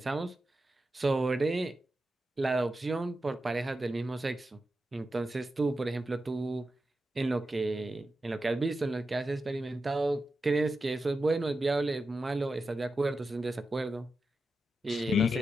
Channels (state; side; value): normal; both; correlation 0.90